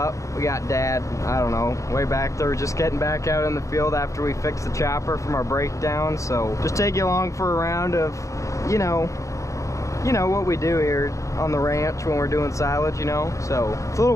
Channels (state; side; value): late; right; 0.15 ms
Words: We got Dad, I don't know, way back there, just getting back out in the field after we fixed the chopper from our breakdown. So just take you along for a round of, you know what we do here on the ranch when we're doing silage, you know. So it's a little